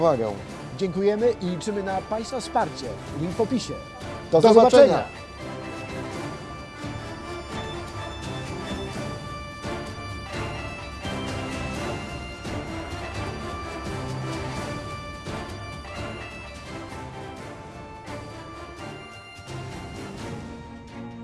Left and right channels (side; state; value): both; identical; correlation 1.00